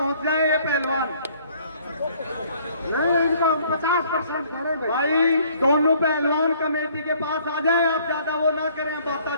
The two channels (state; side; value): inverted; both; correlation -0.60